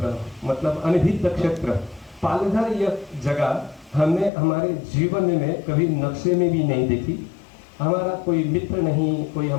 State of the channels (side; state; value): right; drops out; at 4.3 s